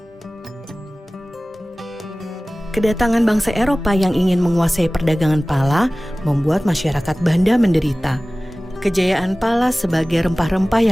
Kedatangan bangsa Eropa yang ingin menguasai perdagangan pala membuat masyarakat Banda menderita. Kejayaan pala sebagai rempah-rempah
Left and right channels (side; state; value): both; normal; correlation 0.98